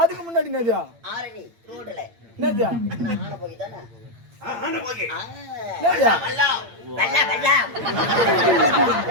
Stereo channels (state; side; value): late; left; 8.9 ms